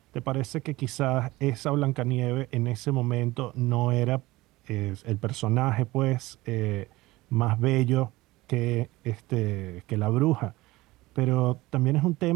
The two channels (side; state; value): left; quieter; 19.5 dB